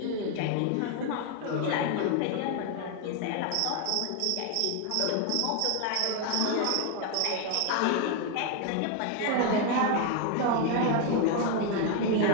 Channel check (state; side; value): different; both; correlation 0.01